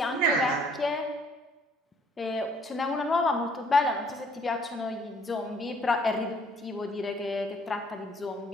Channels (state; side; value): normal; both; correlation 0.61